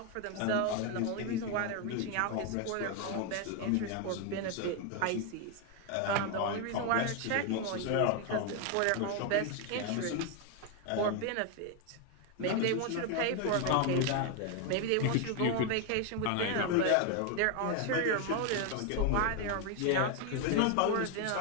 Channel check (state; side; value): different; both; correlation 0.01